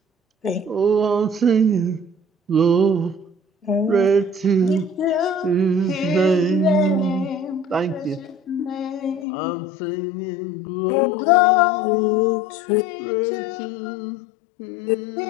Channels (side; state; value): right; drops out; at 9.2 s